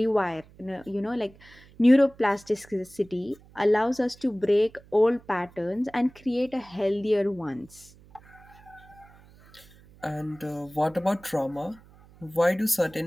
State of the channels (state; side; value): noise; right; hum, 25 dB below the sound